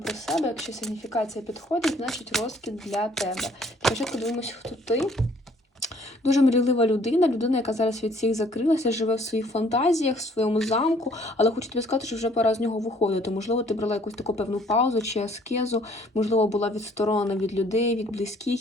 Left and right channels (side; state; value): both; normal; correlation 0.60